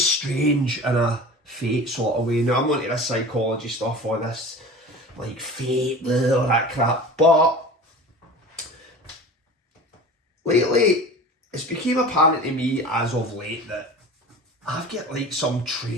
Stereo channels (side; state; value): both; normal; correlation 0.37